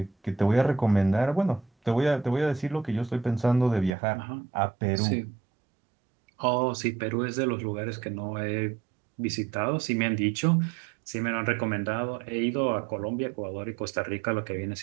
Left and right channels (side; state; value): left; drops out; at 4.0 s